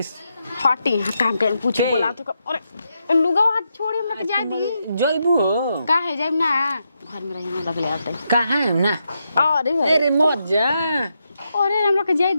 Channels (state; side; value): inverted; both; correlation -0.83